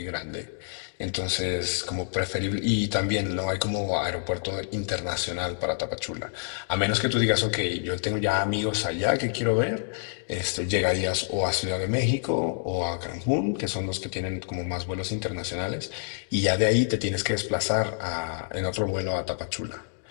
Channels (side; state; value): right; silent; digital silence